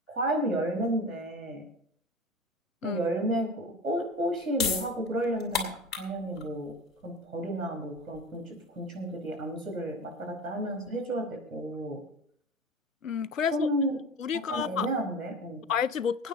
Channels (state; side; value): normal; both; correlation 0.33